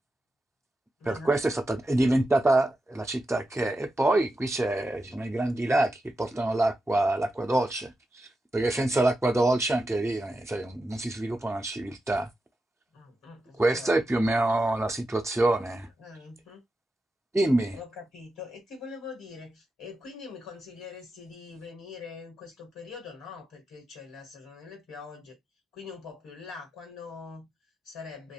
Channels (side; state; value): both; normal; correlation 0.89